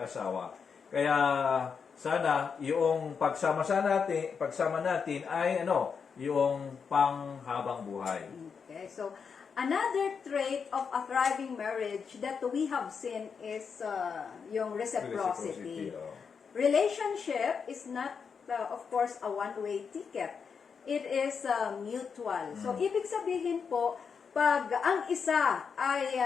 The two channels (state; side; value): quieter; right; 6.1 dB